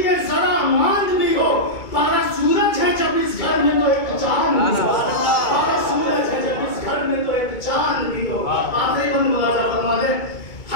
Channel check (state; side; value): late; right; 2.3 ms